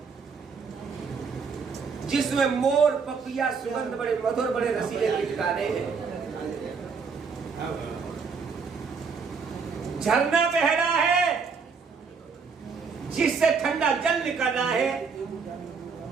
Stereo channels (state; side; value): quieter; left; 5.4 dB